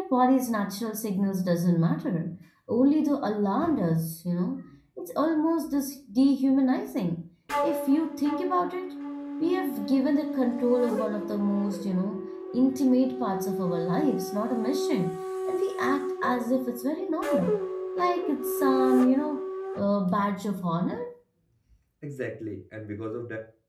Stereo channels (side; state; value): both; identical; correlation 1.00